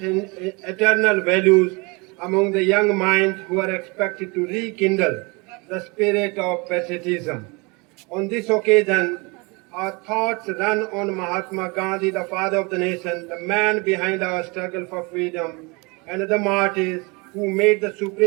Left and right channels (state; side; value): quieter; left; 27.9 dB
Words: eternal values among the young minds who are expected to rekindle the spirit of patriotism. On this occasion, our thoughts run on Mahatma Gandhi, the father of the nation, the man behind our struggle for freedom, and the martyrs who made the